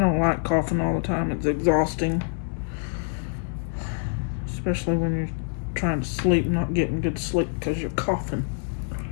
like coughing all the time. It's exhausting. Especially when you're trying to sleep, not getting good sleep because you're coughing.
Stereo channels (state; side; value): silent; right; digital silence